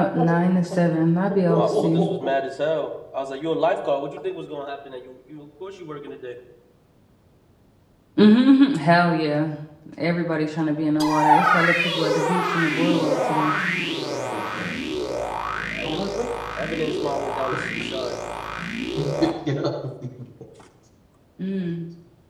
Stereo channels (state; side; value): identical; both; correlation 1.00